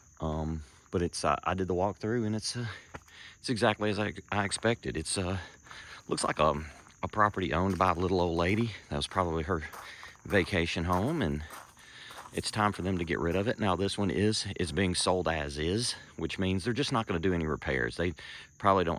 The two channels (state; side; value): identical; both; correlation 1.00